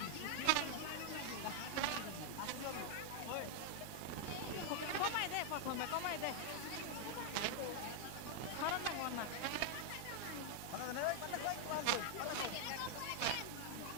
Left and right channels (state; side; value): different; both; correlation 0.00